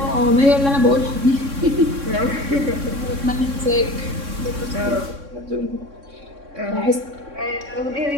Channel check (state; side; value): late; left; 3.6 ms